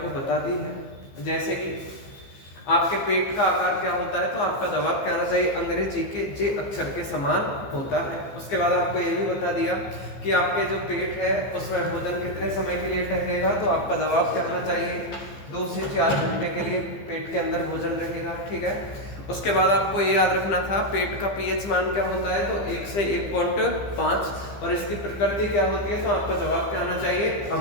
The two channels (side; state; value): right; late; 15 ms